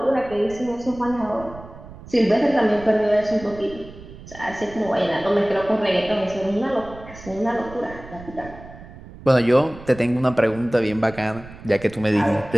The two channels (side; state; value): right; noise; rumble, 17 dB below the sound